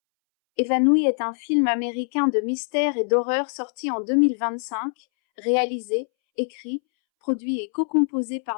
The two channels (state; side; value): silent; right; 63 dB below the other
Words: Évanoui est un film américain de mystère et d'horreur sorti en 2025, réalisé, écrit, produit et co-composé